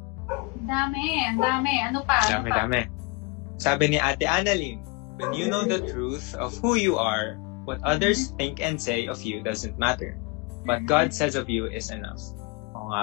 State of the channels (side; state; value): right; quieter; 28.2 dB